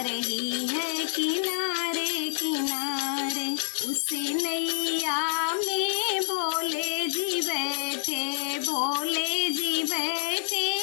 रही है किनारे किनारे। उस नैया में भोले जी बैठे, भोले जी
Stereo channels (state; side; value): silent; right; 59 dB below the other